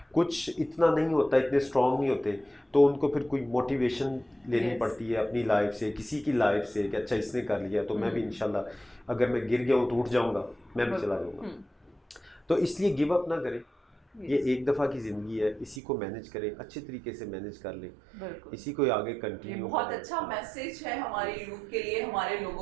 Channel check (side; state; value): left; drops out; at 15.8 s